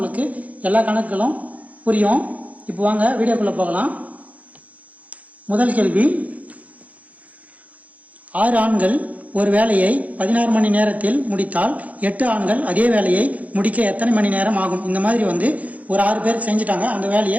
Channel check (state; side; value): late; left; 0.071 ms